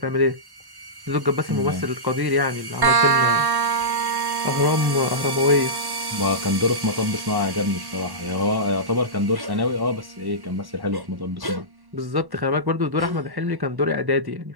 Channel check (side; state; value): left; late; 1.1 ms